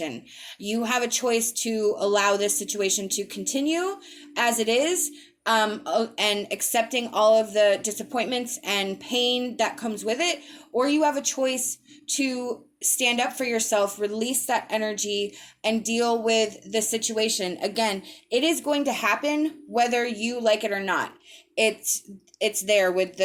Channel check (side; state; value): both; identical; correlation 1.00